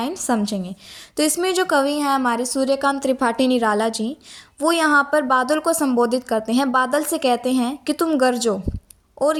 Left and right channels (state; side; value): identical; both; correlation 1.00